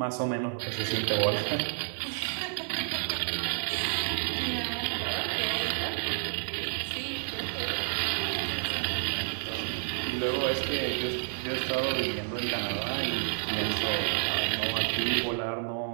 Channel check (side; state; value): left; silent; digital silence